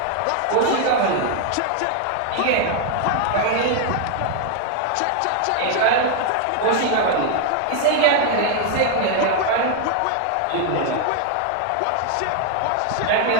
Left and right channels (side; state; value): both; different; correlation 0.00